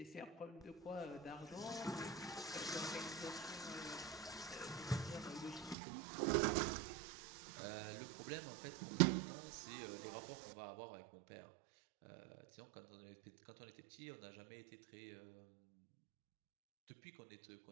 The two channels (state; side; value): drops out; left; at 5.8 s